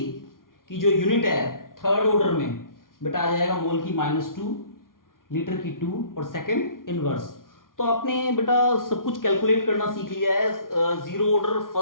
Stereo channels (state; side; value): late; right; 0.90 ms